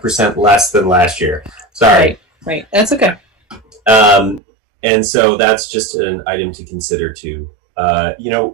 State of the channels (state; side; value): drops out; left; at 4.4 s